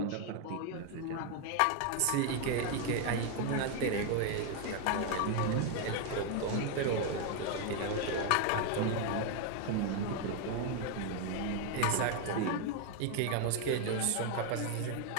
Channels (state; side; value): different; both; correlation 0.01